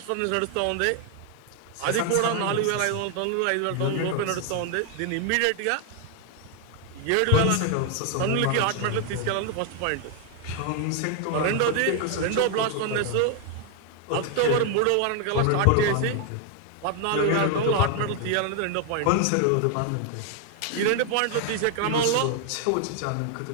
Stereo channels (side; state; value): both; different; correlation 0.01